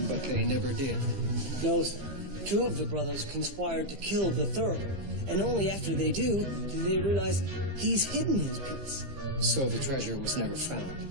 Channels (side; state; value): left; late; 15 ms